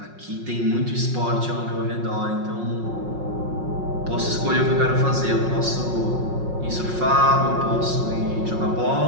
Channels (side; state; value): left; late; 5.5 ms